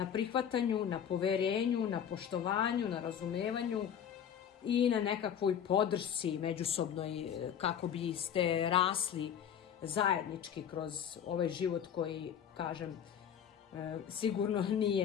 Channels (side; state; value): right; quieter; 8.8 dB